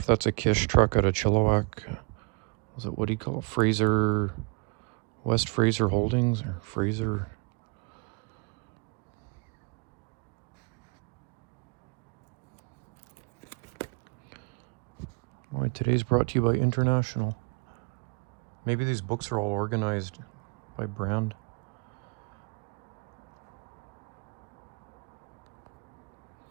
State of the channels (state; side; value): quieter; left; 30.7 dB